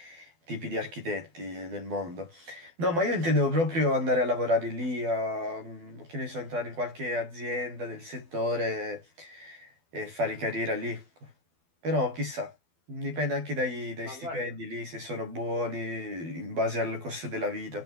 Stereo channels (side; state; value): left; late; 12 ms